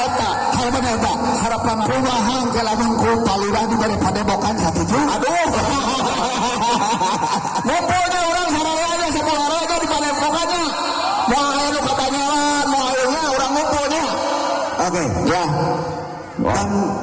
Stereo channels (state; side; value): identical; both; correlation 1.00